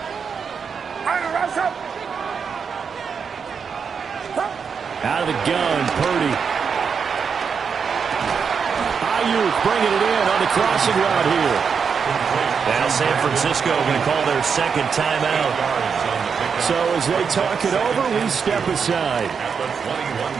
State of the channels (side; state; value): left; quieter; 6.2 dB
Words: Out of the gun, Purdy. Ayuk bringing it in on the crossing route here. Now San Francisco going to call their second timeout. So as they talk it over, we step aside. At the